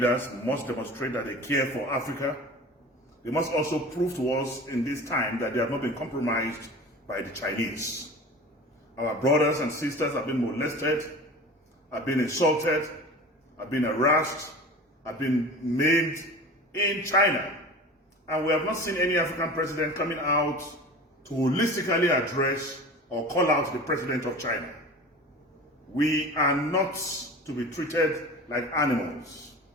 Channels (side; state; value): both; normal; correlation 0.36